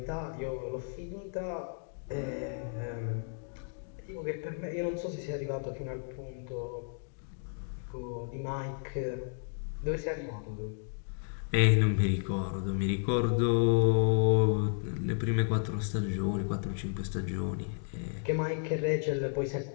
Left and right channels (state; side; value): silent; right; 56 dB below the other